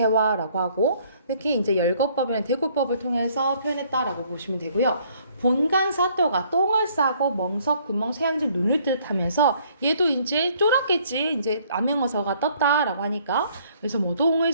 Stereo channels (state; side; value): inverted; both; correlation -0.63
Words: 하고 특히 이제 열거법이나 대구법을 통해서 표현했다라고 보시면 되고요. 본간사또가 똥을 싸고 멍석 구멍 새양질 눈을 뜻하면서 얘도 이제 쫄았겠지. 이제 암행어사가 떴다라고 하니까 그래서 뭐 똥을